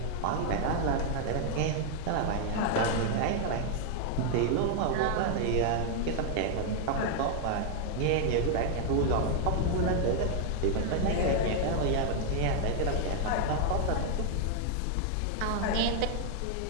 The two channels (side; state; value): both; different; correlation 0.00